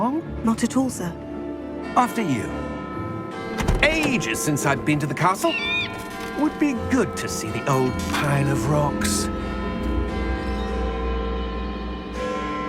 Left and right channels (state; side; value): identical; both; correlation 1.00